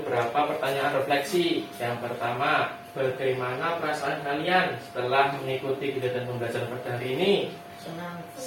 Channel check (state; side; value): identical; both; correlation 1.00